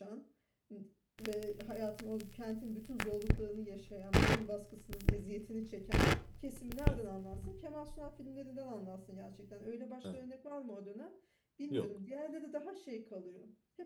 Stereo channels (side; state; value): both; identical; correlation 1.00